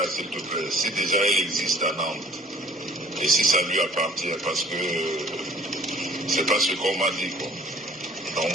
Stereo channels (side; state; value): both; normal; correlation 0.52